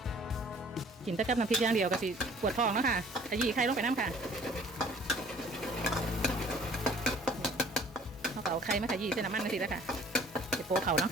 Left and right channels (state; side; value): normal; both; correlation 0.53